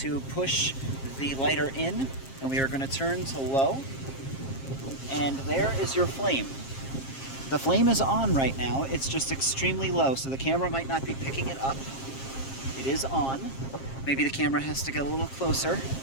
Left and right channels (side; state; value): right; late; 7.5 ms